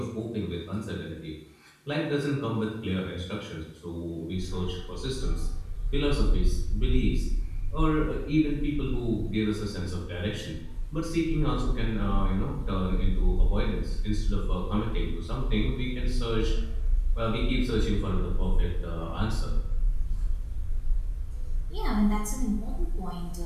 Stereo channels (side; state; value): both; identical; correlation 1.00